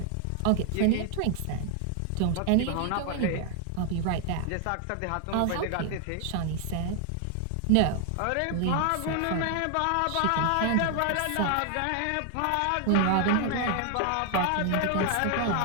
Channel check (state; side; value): different; both; correlation 0.00